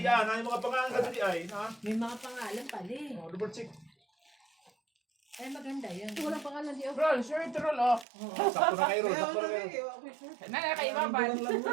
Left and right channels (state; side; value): drops out; left; at 8.1 s